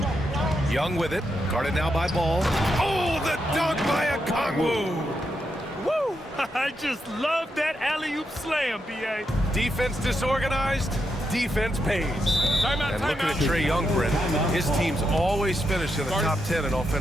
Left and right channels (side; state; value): both; normal; correlation 0.83